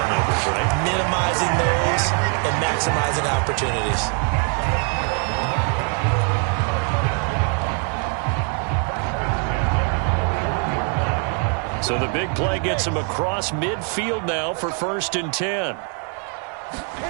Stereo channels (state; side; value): quieter; left; 39.9 dB